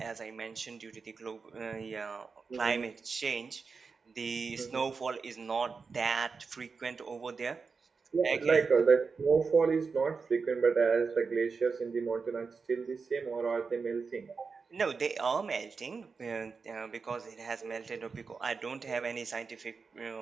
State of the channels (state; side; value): quieter; left; 4.9 dB